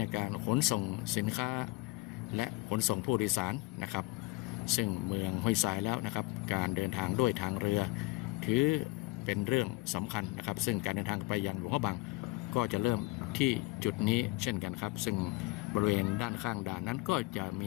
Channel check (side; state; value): right; quieter; 22.8 dB